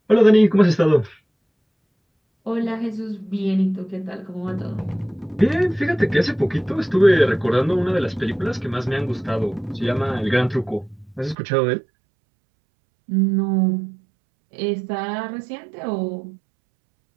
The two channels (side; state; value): left; drops out; at 11.4 s